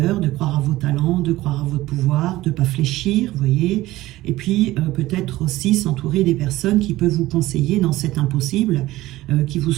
de croire à vos talents, de croire à votre pouvoir, de ne pas fléchir, vous voyez, et puis peut-être aussi s'entourer des personnes qui peuvent vous conseiller dans cet impossible, qui vous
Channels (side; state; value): left; quieter; 17.0 dB